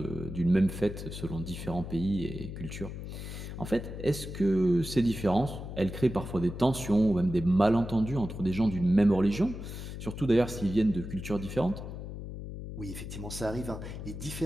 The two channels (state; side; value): noise; left; hum, 9 dB below the sound